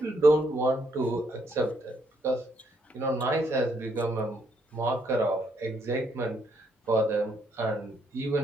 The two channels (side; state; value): both; normal; correlation 0.73